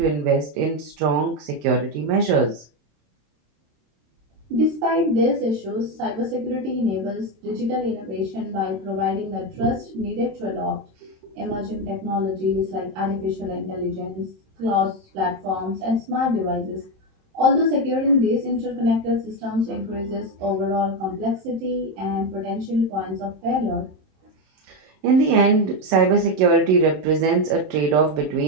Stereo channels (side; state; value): left; late; 27 ms